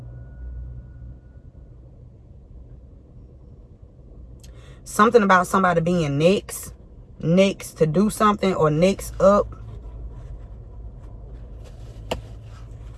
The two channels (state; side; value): identical; both; correlation 1.00